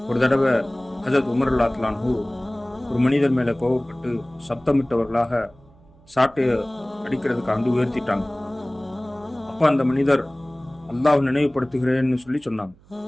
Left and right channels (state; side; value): noise; right; hum, 28 dB below the sound